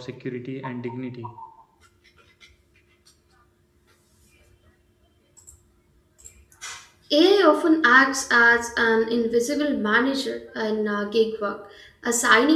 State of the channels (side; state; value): both; identical; correlation 1.00